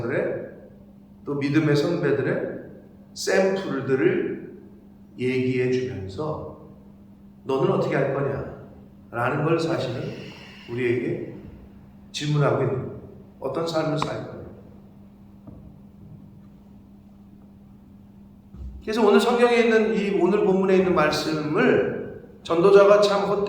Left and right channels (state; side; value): identical; both; correlation 1.00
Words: 또 믿음의 선배들의 샘플들을 얘기해 주면서 너는 어떻게 할 거냐 라는 걸 사실은 우리에게 질문하고 있는 거예요. 어떤 삶을 살 거냐. 그래서 오늘 성경에 있는 이 오늘 본문에 있는 말씀을 전도자가 참